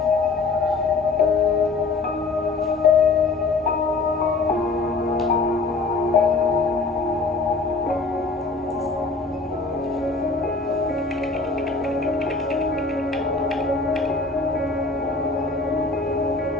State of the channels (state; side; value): quieter; right; 3.8 dB